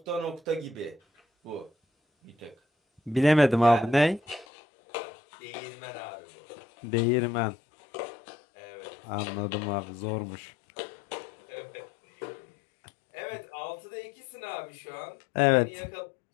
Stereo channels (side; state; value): right; drops out; at 4.5 s